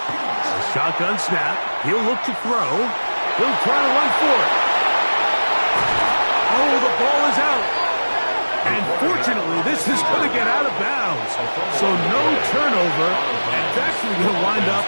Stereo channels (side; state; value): both; inverted; correlation -1.00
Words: A shotgun snap. He'll look to throw. He'll try to run for it. Oh, the ball is out. And fortunately, this is going to get out of bounds. So no turnover, and it's actually going to wind up